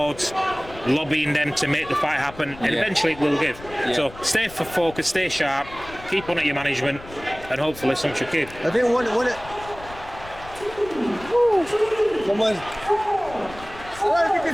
lobbying them to make the fight happen, and eventually it will give. So stay focused, stay sharp, keep on at your management, and hopefully something should give. I think one someone. I don't know if you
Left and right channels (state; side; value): noise; left; rumble, 18 dB below the sound